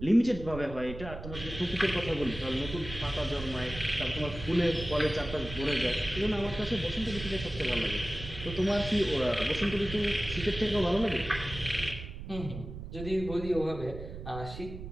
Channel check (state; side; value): noise; right; rumble, 10 dB below the sound